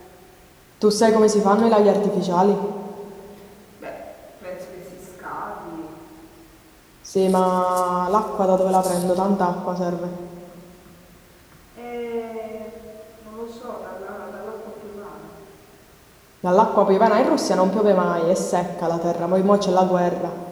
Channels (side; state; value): both; identical; correlation 1.00